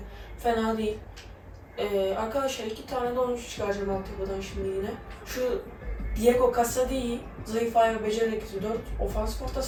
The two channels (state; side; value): identical; both; correlation 1.00